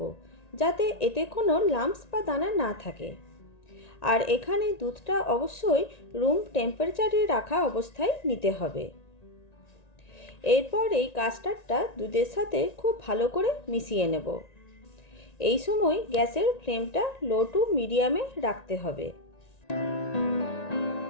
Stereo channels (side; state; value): right; late; 1.9 ms